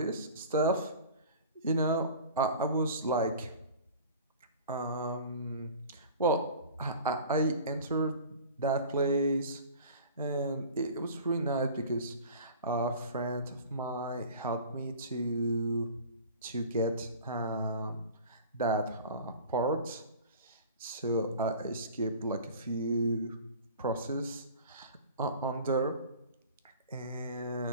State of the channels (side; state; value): both; inverted; correlation -0.41